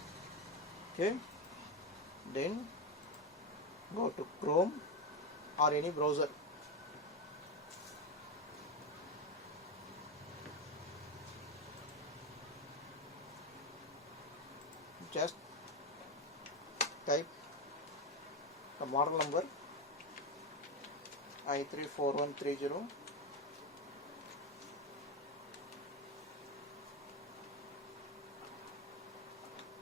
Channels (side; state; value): both; normal; correlation 0.12